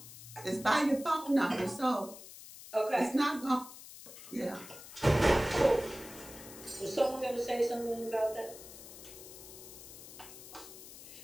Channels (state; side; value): noise; left; hiss, 15 dB below the sound